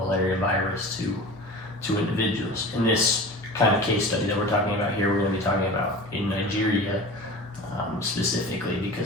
virus to individuals. In this kind of case study that we're talking about here, we're going to be talking about in Nigeria specifically,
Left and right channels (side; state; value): both; normal; correlation 0.36